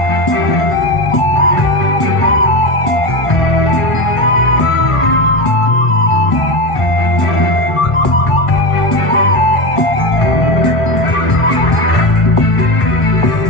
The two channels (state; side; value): late; right; 1.5 ms